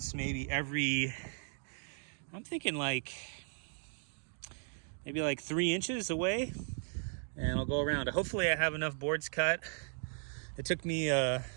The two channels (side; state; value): left; silent; 54 dB below the other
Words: maybe I'm thinking maybe like 3 inches away, and I'll go around. Hopefully I have enough boards cut. It took me a